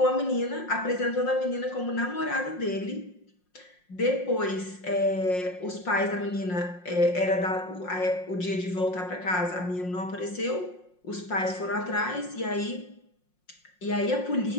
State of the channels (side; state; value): right; late; 5.6 ms